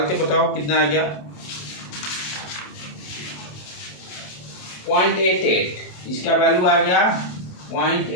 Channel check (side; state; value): right; late; 27 ms